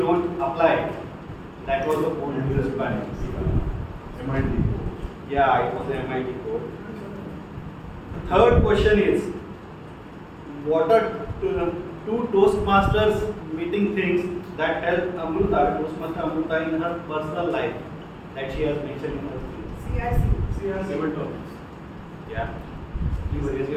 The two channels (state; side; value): identical; both; correlation 1.00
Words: apply it. That was the code used by MIT. Yeah, it was the MIT code. The third question is, what are two Toastmasters meeting things that help Toastmaster Amruta in her personal life that she has mentioned in her speech? CRC. Seven topics. Yeah. Please raise